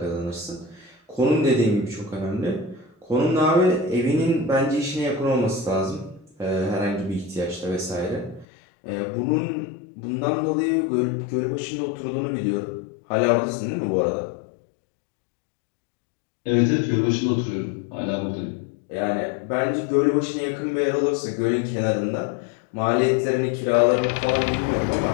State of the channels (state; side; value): drops out; right; at 8.5 s